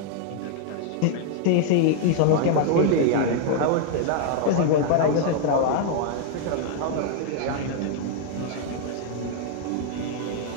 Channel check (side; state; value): both; different; correlation 0.00